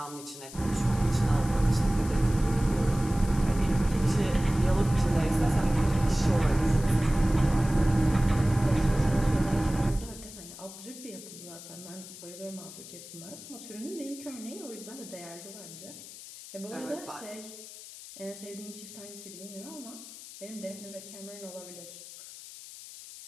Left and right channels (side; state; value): left; noise; hiss, 15 dB below the sound